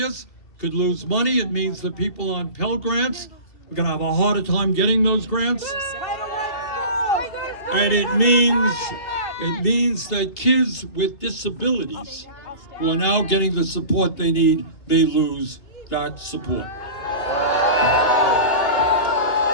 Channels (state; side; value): late; right; 2.8 ms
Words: could lose money. It means that people on Pell Grants are going to have a harder time getting those grants. And it means that kids with disabilities who are now getting the support they need may lose that support.